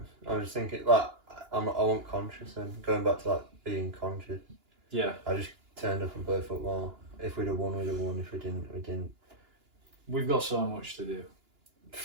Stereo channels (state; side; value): late; left; 2.9 ms